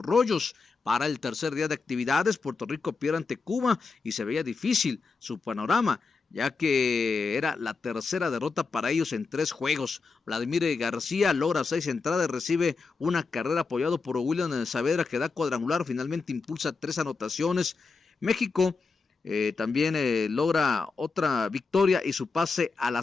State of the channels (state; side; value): quieter; right; 4.5 dB